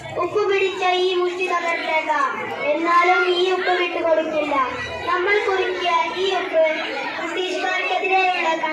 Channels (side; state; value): both; identical; correlation 1.00